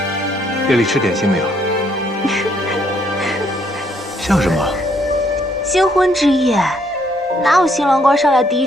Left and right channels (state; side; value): normal; both; correlation 0.69